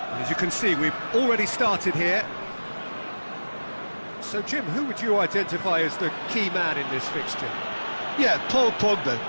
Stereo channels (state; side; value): inverted; both; correlation -1.00